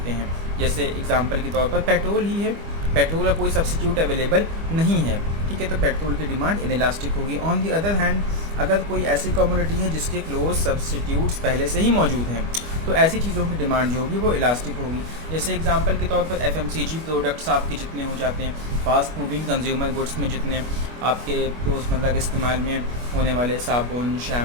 हैं। जैसे एग्जांपल के तौर पर पेट्रोल ही है, पेट्रोल का कोई सब्सटीट्यूट अवेलेबल नहीं है, ठीक है, तो पेट्रोल की डिमांड इनइलास्टिक होगी। ऑन दी अदर हैंड अगर कोई ऐसी कमोडिटी है जिसके क्लोज सब्सटीट्यूट्स पहले से ही मौजूद हैं, तो ऐसी चीज़ों की डिमांड जो होगी वो इलास्टिक होगी। जैसे एग्जांपल के तौर पर एफएमसीजी प्रोडक्ट्स आपके जितने हो जाते हैं, फास्ट मूविंग कंज्यूमर गुड्स में जितने आपके रोज़मर्रा के इस्तेमाल में होने वाले साबुन,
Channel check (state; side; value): late; left; 25 ms